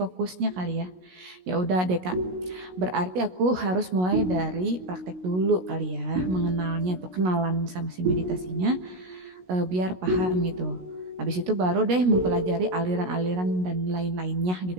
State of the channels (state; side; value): late; left; 16 ms